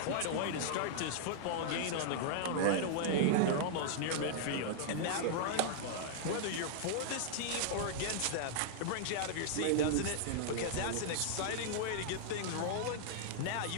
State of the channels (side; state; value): both; different; correlation -0.01